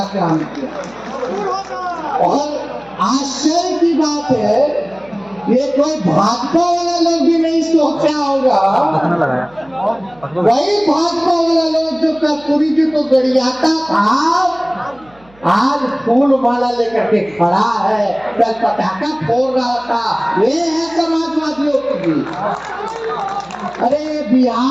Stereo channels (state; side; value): noise; right; hum, 28 dB below the sound